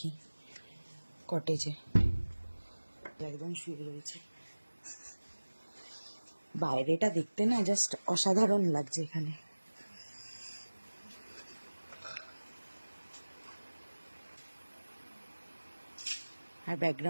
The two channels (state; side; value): inverted; both; correlation -1.00